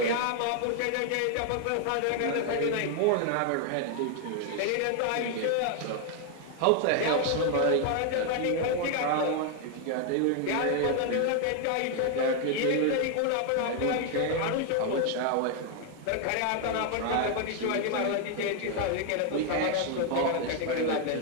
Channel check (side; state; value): both; different; correlation 0.00